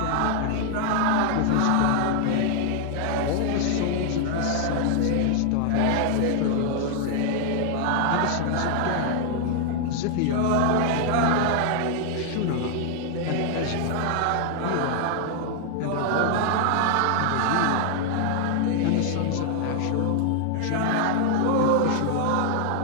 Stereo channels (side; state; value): both; different; correlation 0.00